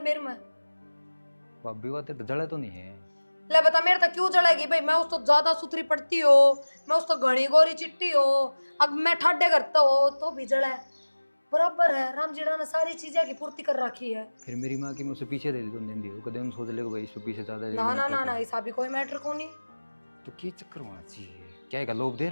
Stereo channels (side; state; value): both; inverted; correlation -1.00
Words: में। भाभी वो तेरे जड़े तो नहीं है। ले बता मेरे तक क्यों जलेगी भाई? मैं उस तो ज्यादा सुथरी पड़ती हो, मैं उस तो घनी गोरी चिट्टी हो, अब मैं ठाडे करता हो तो भी जड़ा है। बराबर है, राम जीड़ा ने सारी चीजें की पूर्ति कर रखी है। फिर मेरी माँ की मैं उसे पीछे दे दी तो दिन दी कदे उन सोच ले भाई इससे पीछे ज्यादा ना ना ना ना, ऐसा भी कोई मैटर को नहीं। तो की चक्कर होना चाहिए क्या है लोभ दे